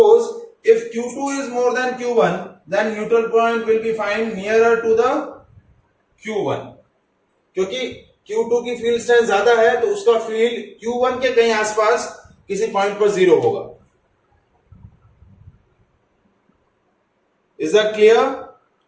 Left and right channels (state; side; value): identical; both; correlation 1.00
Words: if Q2 is more than Q1, then neutral point will be find nearer to the Q1. क्योंकि Q2 की field strength ज्यादा है, तो उसका फील्ड Q1 के कहीं आसपास किसी पॉइंट पर जीरो होगा. Is that clear?